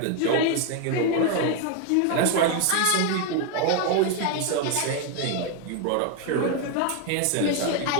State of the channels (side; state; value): both; different; correlation 0.01